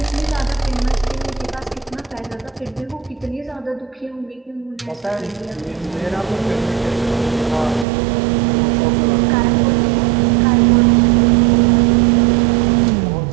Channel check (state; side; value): drops out; left; at 7.9 s